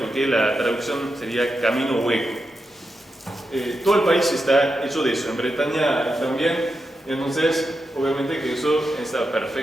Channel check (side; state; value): both; normal; correlation 0.88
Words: que la traducción sería camino hueco. Todo el país está hecho de eso, en Bretaña también. Entonces, obviamente que eso está